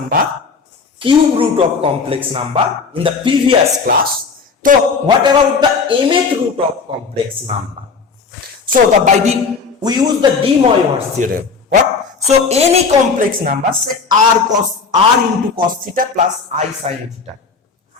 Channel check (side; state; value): right; quieter; 5.0 dB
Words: cube root of complex number in the previous class. So what about the mth root of complex number? So we use the de Moivre's theorem. What? So any complex number, say r into cos theta plus I sin theta,